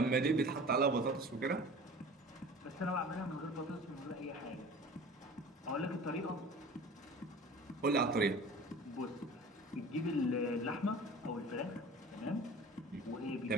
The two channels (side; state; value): both; normal; correlation 0.41